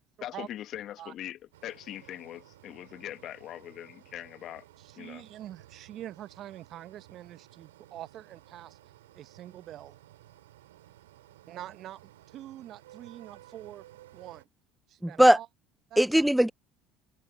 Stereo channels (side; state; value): both; normal; correlation 0.96